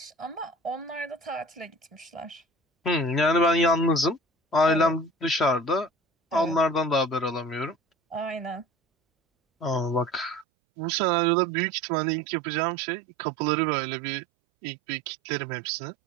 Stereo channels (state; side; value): drops out; left; at 10.5 s